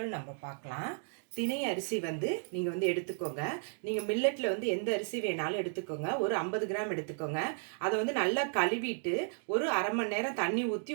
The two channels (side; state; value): left; silent; 55 dB below the other